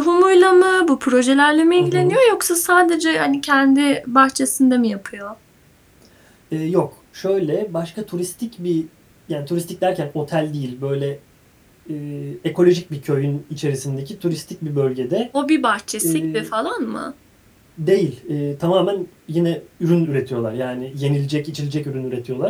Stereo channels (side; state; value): both; identical; correlation 1.00